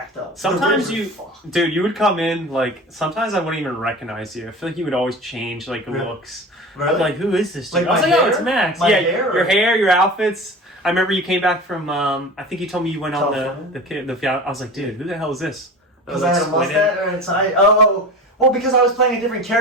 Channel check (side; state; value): both; normal; correlation 0.34